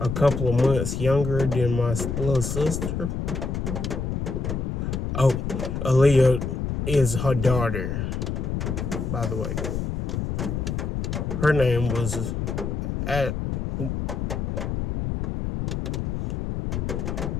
a couple of months younger than my little sister. Oh, Aaliyah is her daughter, by the way. Her name was I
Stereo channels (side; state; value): left; noise; rumble, 2 dB below the sound